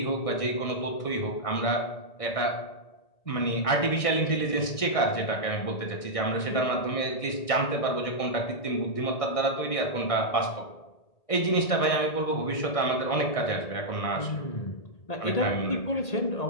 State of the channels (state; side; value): late; right; 1.6 ms